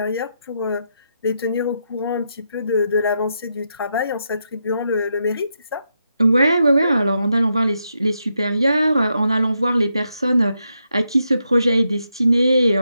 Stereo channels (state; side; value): inverted; both; correlation -0.82